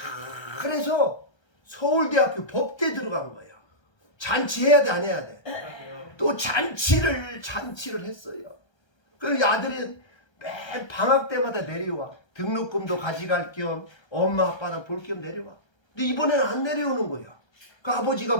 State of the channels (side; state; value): right; late; 1.3 ms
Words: 서울대학교 법대 들어간 거야. 잔치해야 돼 안 해야 돼? 또 잔치를 했어요. 그 아들이 매 방학 때마다 내려와. 등록금도 가져갈 겸 엄마 아빠나 볼 겸 내려와. 근데 이번에는 안 내려오는 거야. 그 아버지가